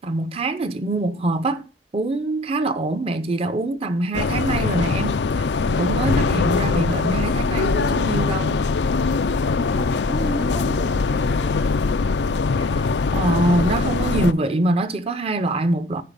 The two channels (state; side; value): normal; both; correlation 0.49